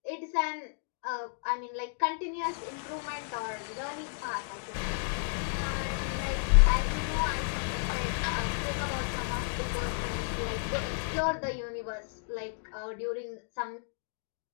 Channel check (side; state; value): right; silent; digital silence